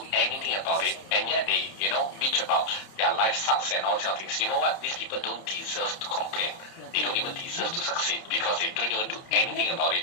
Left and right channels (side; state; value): right; late; 30 ms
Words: anything about it, and yet they, bitch about their life sucks and all these other things. You know what? These people don't deserve to complain. They don't even deserve to succeed because they don't even do anything about it.